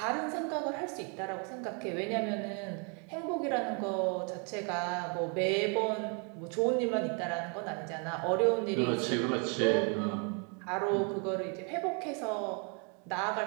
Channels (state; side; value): quieter; left; 36.9 dB